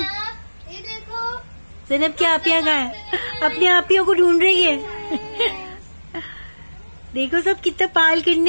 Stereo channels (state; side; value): inverted; both; correlation -1.00